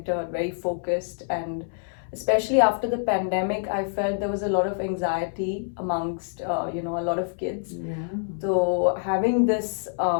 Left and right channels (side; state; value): right; silent; 61 dB below the other